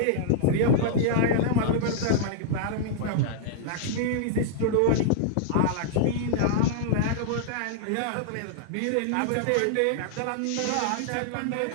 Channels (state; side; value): different; both; correlation -0.02